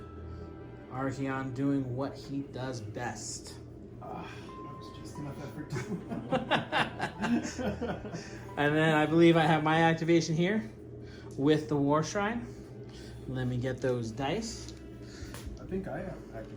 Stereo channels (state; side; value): identical; both; correlation 1.00